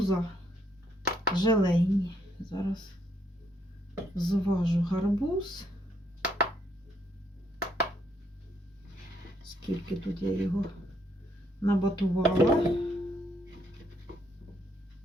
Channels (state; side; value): normal; both; correlation 0.72